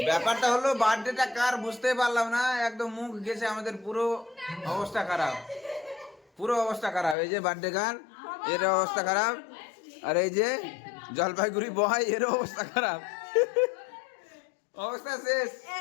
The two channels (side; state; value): right; drops out; at 7.2 s